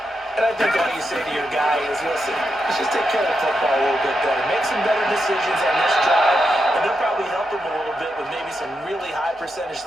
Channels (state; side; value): normal; both; correlation 0.85